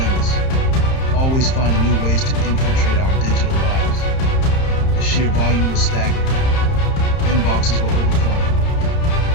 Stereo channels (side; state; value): right; late; 30 ms